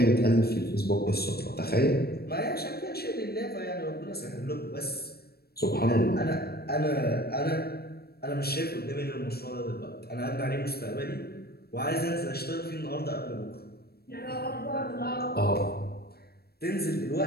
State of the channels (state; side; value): late; right; 0.46 ms